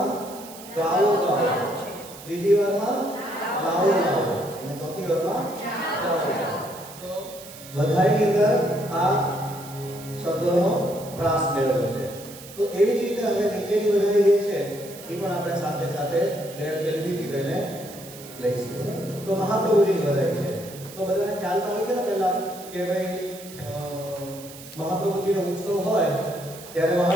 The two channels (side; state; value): right; noise; hiss, 16 dB below the sound